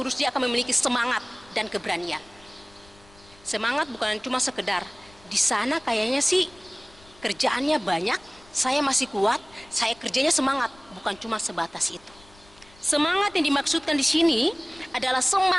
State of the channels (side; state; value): left; noise; rumble, 26 dB below the sound